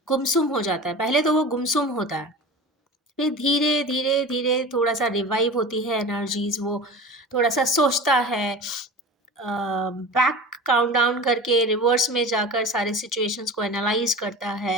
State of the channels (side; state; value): both; normal; correlation 0.34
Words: गुमसुम हो जाता है। पहले तो वो गुमसुम होता है, फिर धीरे धीरे धीरे थोड़ा सा रिवाइव होती है एनर्जीज। वो थोड़ा सा सोचता है, बैक काउंट डाउन करके रिवर्स में जाकर सारे सिचुएशंस को एनालाइज करता